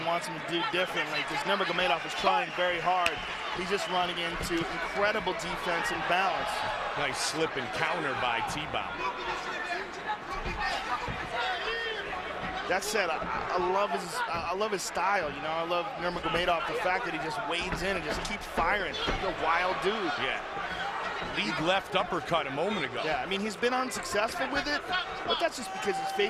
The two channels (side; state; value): both; identical; correlation 1.00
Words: wants him to do differently, because Nurmagomedov is trying very hard. He's just running into incredible defense and balance. Nice slip and counter by Thibaut. That said, I love his style. You know, I love Nurmagomedov, the fact that he just wades in and just keeps firing. He's a wild dude. Yeah. Lead left uppercut a moment ago. Yeah, I mean, he's been unsuccessful with it, but that's just because he's